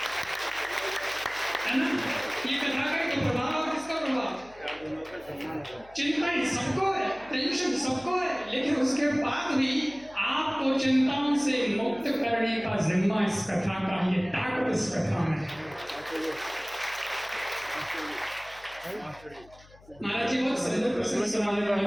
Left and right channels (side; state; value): left; noise; hum, 25 dB below the sound